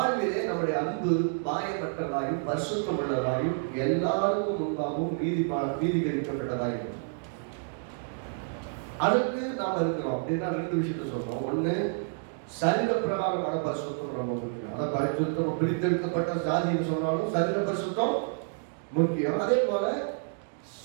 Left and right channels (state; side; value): silent; left; digital silence